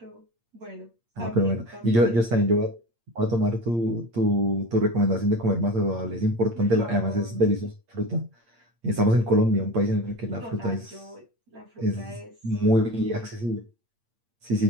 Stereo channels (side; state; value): left; late; 8.7 ms